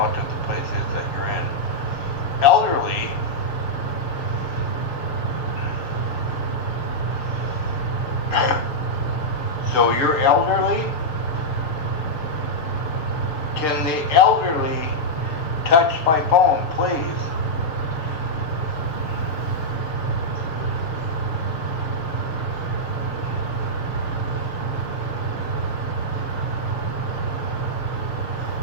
the place is that you're in. Elderly, so you're elderly? Can the elderly touch my phone, please?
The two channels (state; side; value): late; right; 6.9 ms